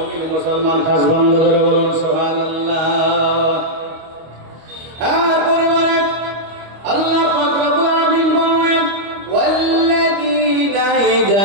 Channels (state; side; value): late; left; 25 ms